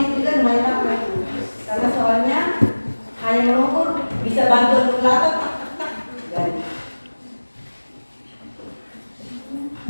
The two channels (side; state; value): both; inverted; correlation -1.00